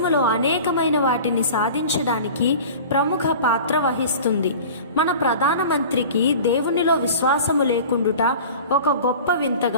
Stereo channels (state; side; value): inverted; both; correlation -0.39